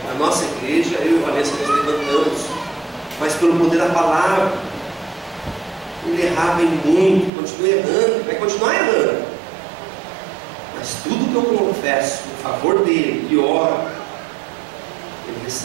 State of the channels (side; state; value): left; drops out; at 7.3 s